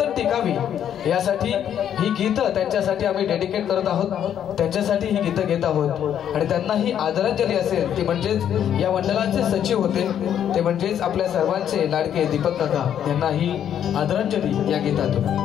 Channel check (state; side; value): quieter; right; 9.6 dB